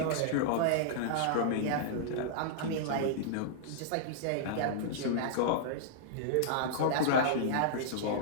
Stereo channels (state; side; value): different; both; correlation -0.02